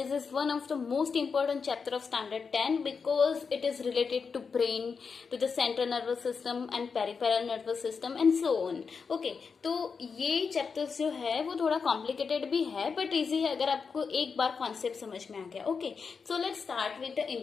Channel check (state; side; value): quieter; right; 5.5 dB